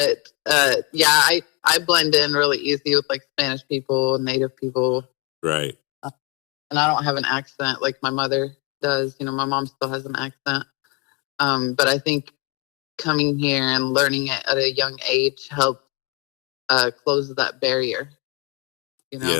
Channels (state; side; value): quieter; right; 23.6 dB